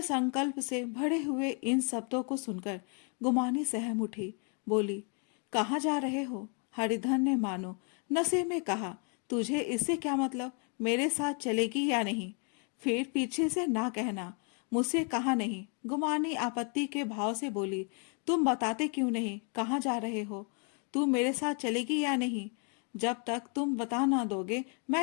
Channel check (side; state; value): right; quieter; 38.9 dB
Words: संकल्प से भरे हुए इन शब्दों को सुनकर गुमानी सहम उठी, बोली, कहाँ जा रहे हो? हरिधन ने मानो नशे में कहा, तुझे इससे क्या मतलब? मेरे साथ चलेगी या नहीं? फिर पीछे से ना कहना, मुझसे कहा नहीं। गुमानी आपत्ति के भाव से बोली, तुम बताते क्यों नहीं कहाँ जा रहे हो? तू मेरे साथ चलेगी या नहीं? जब तक तुम बता ना दोगे